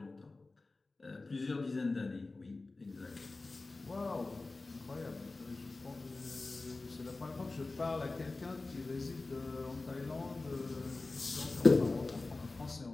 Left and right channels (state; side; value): quieter; right; 3.4 dB